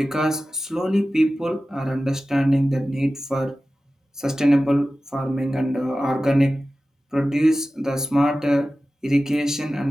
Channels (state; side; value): normal; both; correlation 0.95